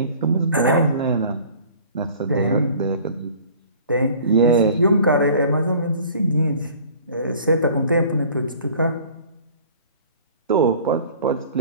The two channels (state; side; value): inverted; both; correlation -0.49